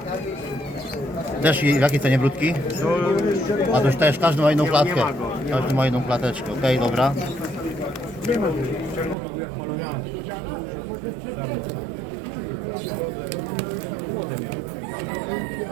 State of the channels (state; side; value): drops out; left; at 9.2 s